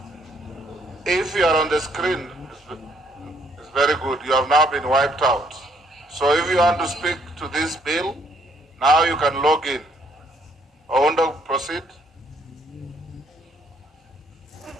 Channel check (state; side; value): normal; both; correlation 0.67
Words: if you are on the screen, it's very good. You have now been wiped out. So if you want to speak to this bill, now you can log in. Ounda, proceed.